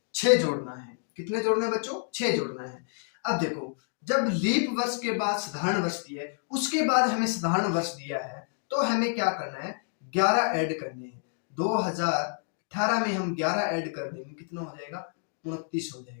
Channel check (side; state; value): right; silent; 59 dB below the other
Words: 6 जोड़ना है। कितने जोड़ना है बच्चों, 6 जोड़ना है। अब देखो जब लीप वर्ष के बाद साधारण वर्ष दिया है, उसके बाद हमें साधारण वर्ष दिया है, तो हमें क्या करना है, 11 ऐड करने हैं। 2018 में हम 11 ऐड कर देंगे, कितना हो जाएगा, 29 हो